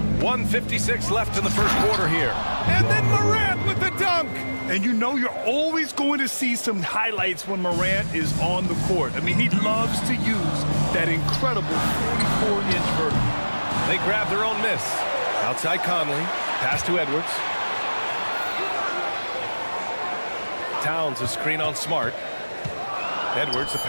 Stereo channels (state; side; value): inverted; both; correlation -1.00